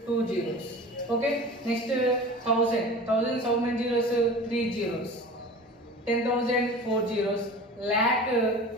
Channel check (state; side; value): normal; both; correlation 0.37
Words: 2 zeros. Okay. Next, 1000. 1000 how many zeros? 3 zeros. 10,000 4 zeros. Lakh